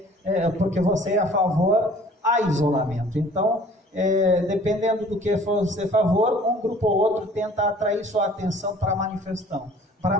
porque você é a favor a isolamento. Então, dependendo do que você é a favor, um grupo ou outro tenta atrair sua atenção para a manifestação.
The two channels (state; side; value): normal; both; correlation 0.51